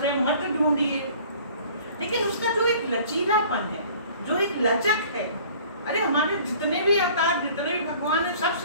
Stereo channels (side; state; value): both; inverted; correlation -0.50